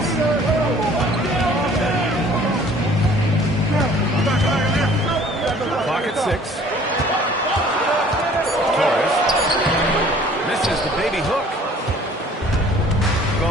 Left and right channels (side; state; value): both; normal; correlation 0.53